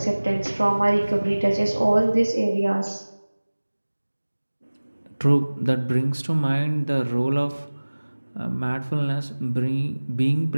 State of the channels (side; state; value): both; inverted; correlation -1.00